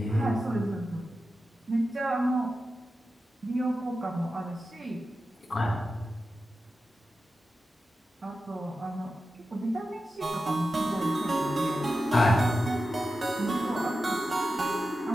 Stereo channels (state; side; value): normal; both; correlation 0.92